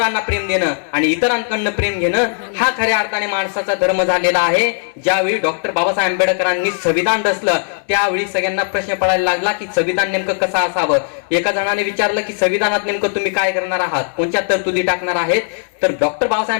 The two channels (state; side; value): silent; right; 68 dB below the other